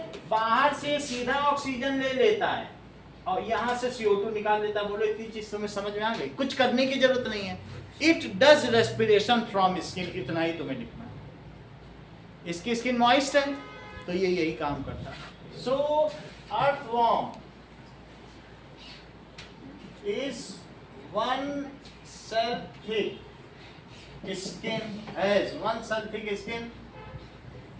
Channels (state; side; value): identical; both; correlation 1.00